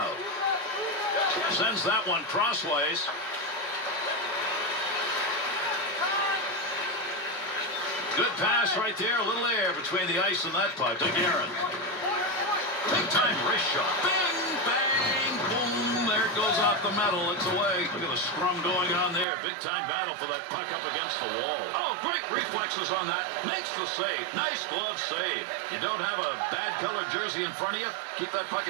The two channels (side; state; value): left; drops out; at 19.2 s